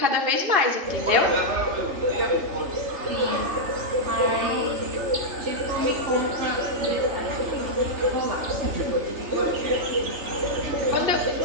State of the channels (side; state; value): left; late; 3.3 ms